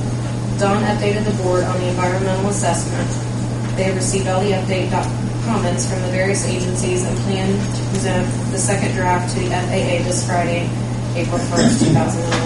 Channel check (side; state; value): both; identical; correlation 1.00